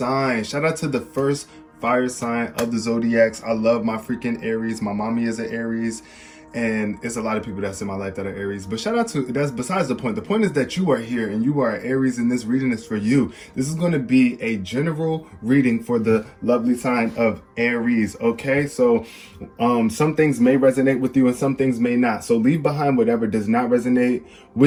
Shout out to the first fire sign of the zodiacs. I love my freaking Aries. My mommy is an Aries, and it's a lot of people that's in my life that are Aries. But shout out to, that's besides the point. The point is that you are here and you are Aries, and this reading is for you. This is going to be a general reading for the lovely sign of Aries. Okay, so some things may resonate with you and some things may not. So leave behind whatever does not resonate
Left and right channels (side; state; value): both; identical; correlation 1.00